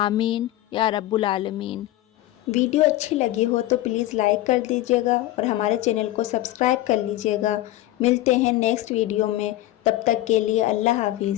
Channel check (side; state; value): right; quieter; 15.7 dB